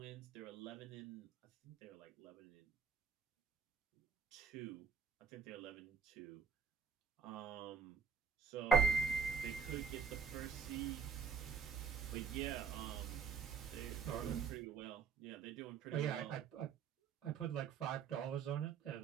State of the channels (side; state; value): left; quieter; 6.3 dB